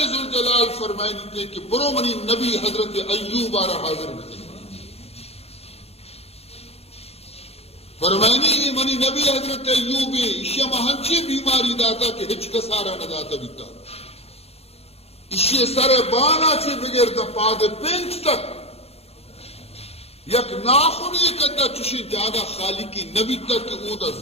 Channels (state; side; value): late; right; 0.29 ms